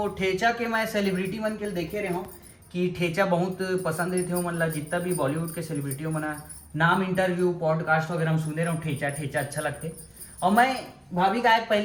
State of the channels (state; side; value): identical; both; correlation 1.00